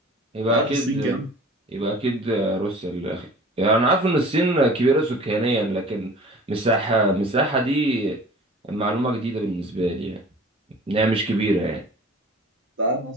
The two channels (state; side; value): normal; both; correlation 0.44